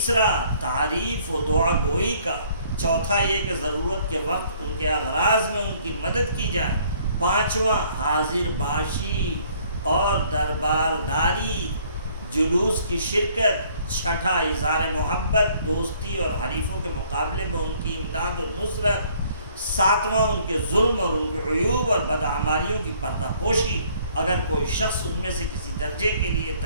تعریف و دعا گوئی کا، چوتھا یہ کہ ضرورت کے وقت ان کے اغراض میں ان کی مدد کی جائے، پانچواں حاضر باشی اور دربارداری، جلوس کی شرکت، چھٹا اظہار محبت، دوستی اور حریفوں کے مقابلے میں ان کی امداد و نصرت، ساتواں ان کے ظلم اور ان کے عیوب اور بدعمالیوں کی پردہ پوشی۔ اگر کوئی شخص ان میں سے کسی درجے کے لیے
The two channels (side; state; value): both; inverted; correlation -0.61